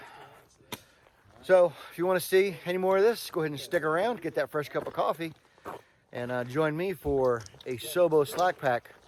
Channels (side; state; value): both; identical; correlation 1.00